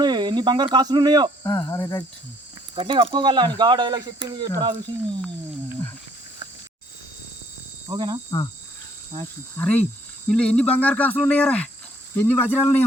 ఎన్ని బంగారు కాసులు ఉన్నాయో అరే రైట్ గట్టిగా కప్పుకోగల అని గా డైలాగ్ చెప్పింది ఎట్లా చూసి ఓకేనా అరే వీళ్ళు ఎన్ని బంగారు కాసులు ఉన్నాయారా ఎన్ని వజ్రాలు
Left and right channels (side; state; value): both; normal; correlation 0.63